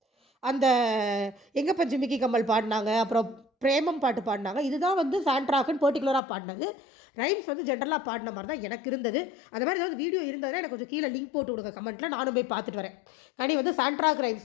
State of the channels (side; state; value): right; drops out; at 6.2 s